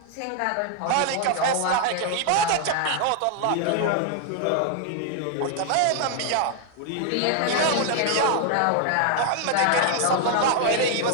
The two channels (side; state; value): both; different; correlation 0.00